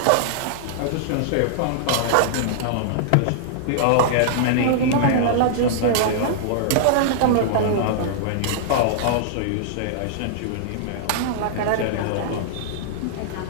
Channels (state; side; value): different; both; correlation -0.01